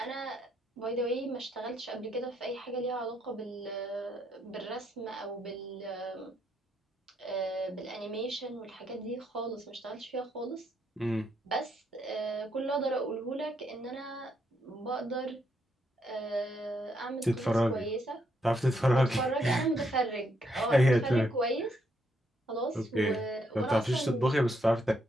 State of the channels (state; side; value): normal; both; correlation 0.75